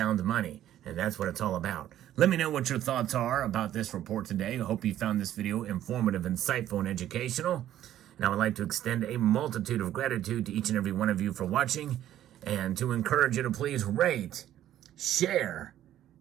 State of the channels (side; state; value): left; quieter; 12.2 dB